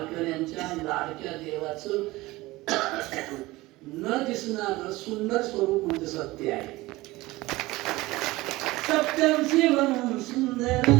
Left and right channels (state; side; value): quieter; left; 19.7 dB